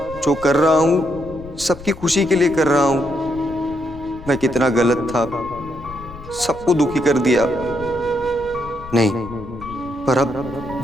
जो कर रहा हूँ सबकी खुशी के लिए कर रहा हूँ। मैं कितना गलत था, सबको दुखी कर दिया। नहीं, पर अब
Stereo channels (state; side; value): noise; left; rumble, 16 dB below the sound